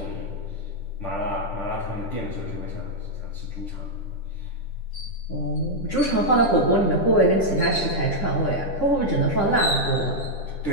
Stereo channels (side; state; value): right; late; 10 ms